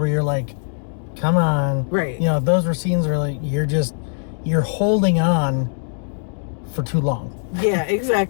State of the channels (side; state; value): right; silent; digital silence